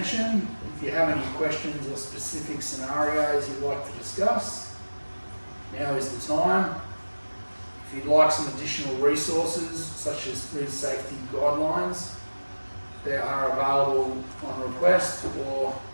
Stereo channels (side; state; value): both; inverted; correlation -1.00